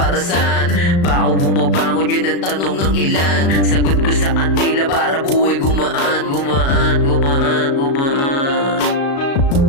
saan ba ako bumabangon? Yan ang tanong ng ilan. Sagot ko sa kanila para buhay gumaan. Gumaan, gumaan, gumaan.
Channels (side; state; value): right; late; 36 ms